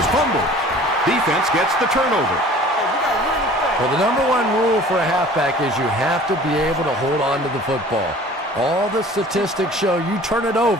fumbled. Defense gets the turnover. Well, the number one rule for a halfback is you have to be able to hold on to the football. All the statistics show you turn it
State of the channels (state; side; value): normal; both; correlation 0.47